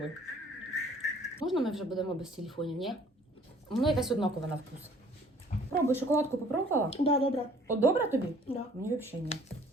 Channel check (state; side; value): normal; both; correlation 0.55